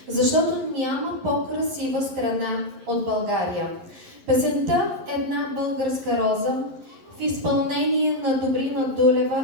защото няма по-красива страна от България. Песента "Една българска роза" в изпълнение на Добрина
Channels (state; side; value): late; left; 11 ms